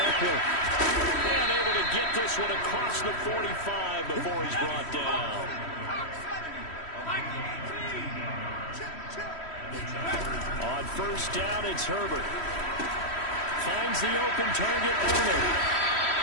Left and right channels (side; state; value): right; late; 3.1 ms